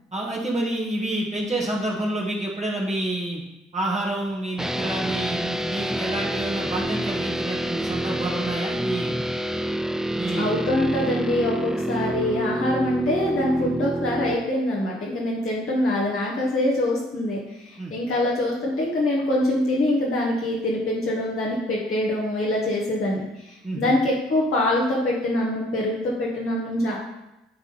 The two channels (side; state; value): both; normal; correlation 0.65